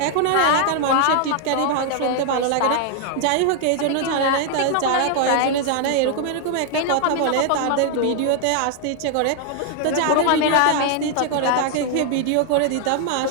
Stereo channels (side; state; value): both; different; correlation 0.00